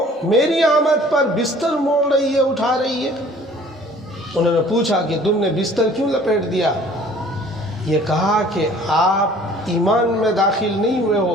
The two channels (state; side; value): normal; both; correlation 0.52